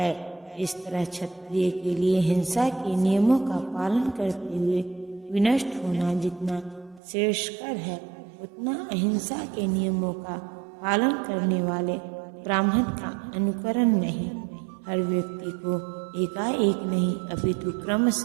इस तरह क्षत्रिय के लिए हिंसा के नियमों का पालन करते हुए विनष्ट होना जितना श्रेयस्कर है, उतना अहिंसा के नियमों का पालन करने वाले ब्राह्मण का अनुकरण नहीं। हर व्यक्ति को एकाएक नहीं अपितु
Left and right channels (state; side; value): drops out; left; at 7.0 s